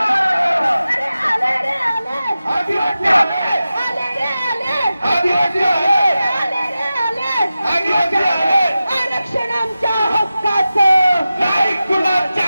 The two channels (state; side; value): inverted; both; correlation -0.94